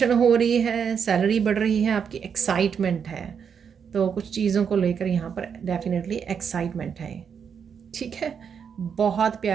हो रही है, सैलरी बढ़ रही है, आपकी एक्साइटमेंट है, तो कुछ चीज़ों को लेकर यहाँ पर डेफिनेटली एक्साइटमेंट है, ठीक है। बहुत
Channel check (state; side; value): quieter; left; 7.1 dB